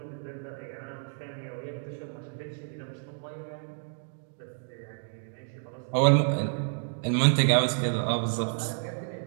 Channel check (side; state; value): left; silent; digital silence